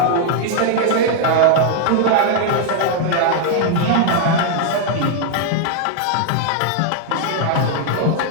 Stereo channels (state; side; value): different; both; correlation 0.00